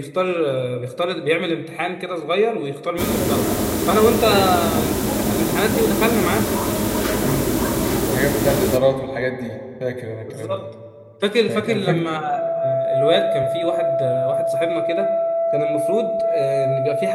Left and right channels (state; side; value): identical; both; correlation 1.00